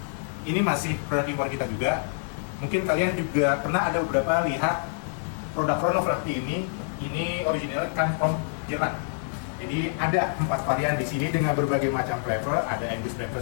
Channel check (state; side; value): silent; right; 60 dB below the other